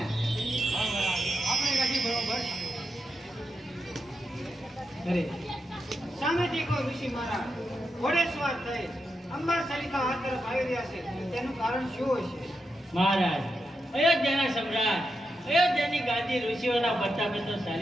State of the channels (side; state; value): both; normal; correlation 0.86